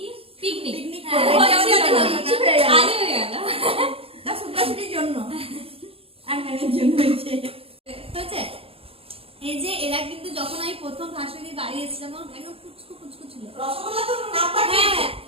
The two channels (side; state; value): left; late; 0.27 ms